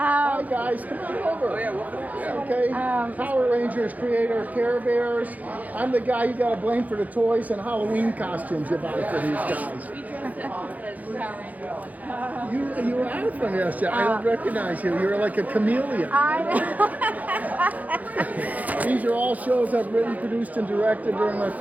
guys. Come on over. Oh, yeah, welcome. Okay. Power Rangers creator, Care Bears. I'm the guy you got to blame for the toys and Halloween costumes you buy for these guys. You were out from yesterday. I don't recognize you. You're like a chameleon. These are all shows I've written, produced, and directed during my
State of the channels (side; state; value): left; late; 0.078 ms